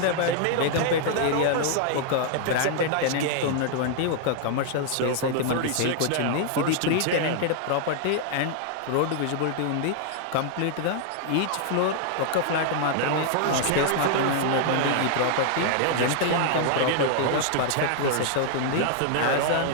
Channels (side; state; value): both; different; correlation 0.00